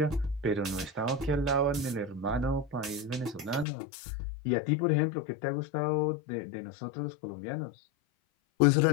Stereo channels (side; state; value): right; drops out; at 3.7 s